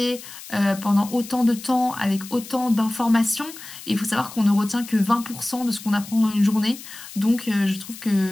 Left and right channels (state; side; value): noise; left; hiss, 15 dB below the sound